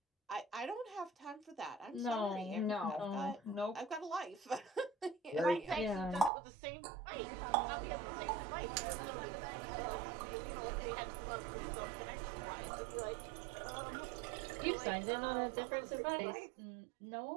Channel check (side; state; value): left; drops out; at 6.3 s